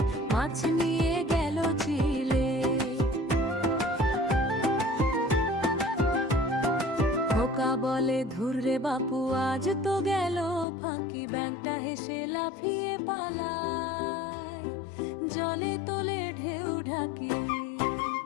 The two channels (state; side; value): drops out; right; at 10.7 s